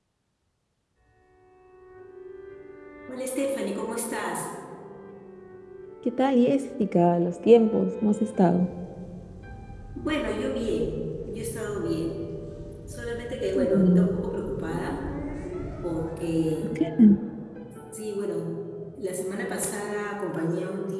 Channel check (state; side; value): identical; both; correlation 1.00